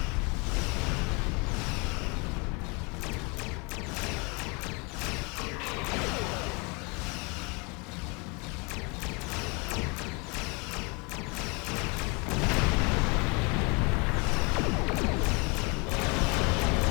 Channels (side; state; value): right; quieter; 30.5 dB